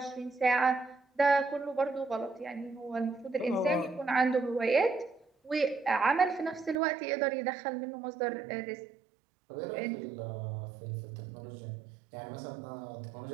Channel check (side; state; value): left; drops out; at 6.8 s